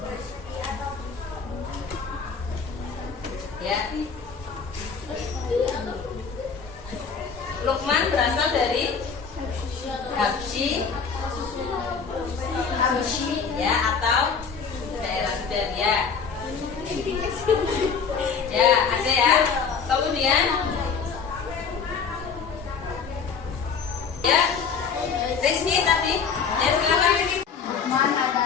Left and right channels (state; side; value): quieter; right; 5.9 dB